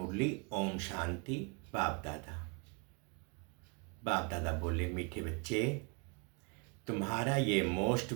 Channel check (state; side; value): quieter; left; 33.6 dB